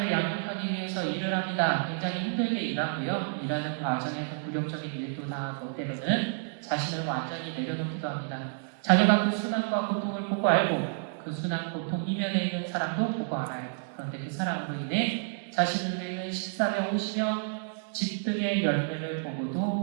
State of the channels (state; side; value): silent; left; digital silence